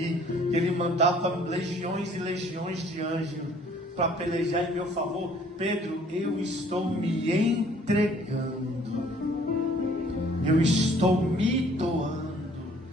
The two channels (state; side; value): normal; both; correlation 0.57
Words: que ele mandava legiões e legiões de anjos para pelejar em meu favor? Pedro, eu estou me entregando, eu estou me doando,